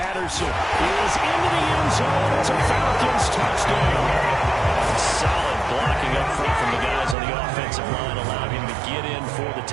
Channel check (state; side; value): drops out; left; at 7.2 s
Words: is into the end zone. It's a Falcons touchdown. Solid blocking up front from the guys on the offensive line allowed him to get in for the